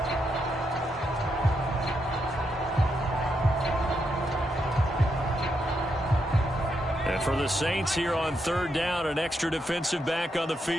And for the Saints here on 3rd down, an extra defensive back on the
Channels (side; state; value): both; normal; correlation 0.81